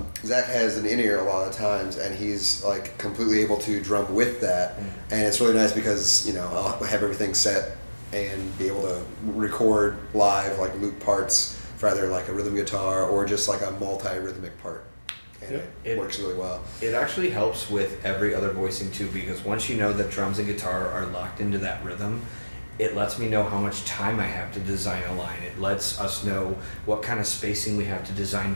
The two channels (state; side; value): inverted; both; correlation -1.00